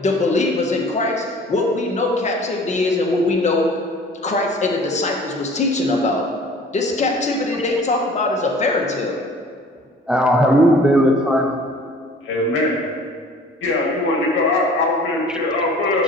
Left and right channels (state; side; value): normal; both; correlation 0.48